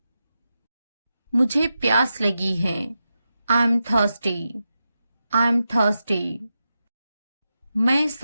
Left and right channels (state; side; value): inverted; both; correlation -0.89